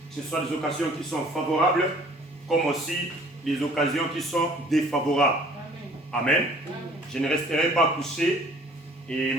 Que ce soit des occasions qui sont favorables, comme aussi les occasions qui sont défavorables. Amen. Je ne resterai pas couché et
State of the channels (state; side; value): normal; both; correlation 0.53